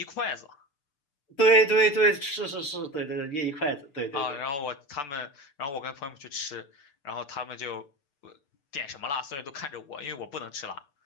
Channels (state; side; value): late; right; 6.8 ms